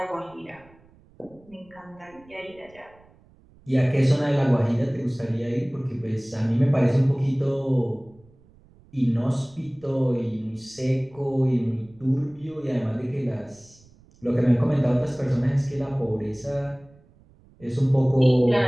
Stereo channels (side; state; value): right; noise; rumble, 28 dB below the sound